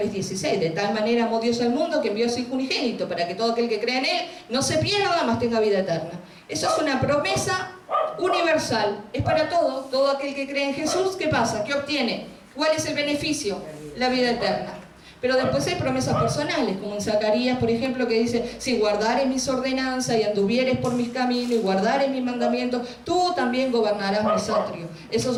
De tal manera amó Dios al mundo que envió a su Hijo unigénito para que todo aquel que crea en Él no se pierda, mas tenga vida eterna. Eso es una promesa universal. Es para todo. Todo aquel que cree en Jesús, ¿qué pasa? ¿Qué obtiene? ¿Cuál es el beneficio? La vida eterna. Pero después hay promesas personales, como en Zacarías, por ejemplo, que dice: si guardares mis ordenanzas y anduvieres por mis caminos y guardares mis mandamientos, tú también gobernarás mis atrios. Esas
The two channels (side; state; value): both; identical; correlation 1.00